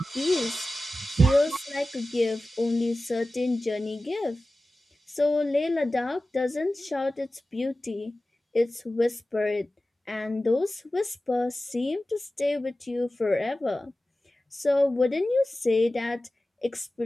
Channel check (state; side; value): normal; both; correlation 0.96